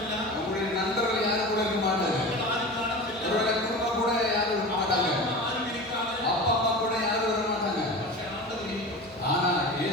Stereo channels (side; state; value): right; noise; hum, 25 dB below the sound